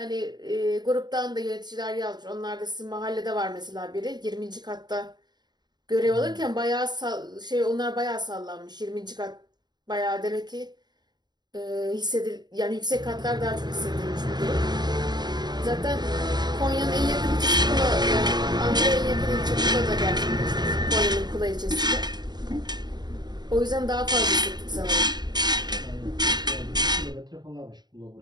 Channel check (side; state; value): left; late; 0.20 ms